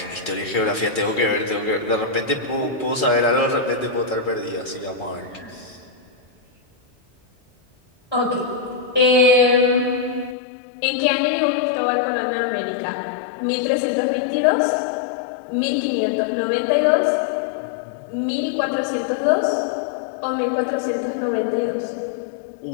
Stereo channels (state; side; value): drops out; right; at 10.4 s